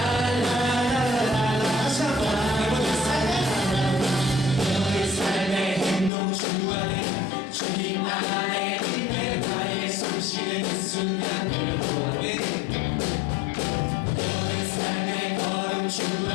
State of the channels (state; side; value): drops out; right; at 6.1 s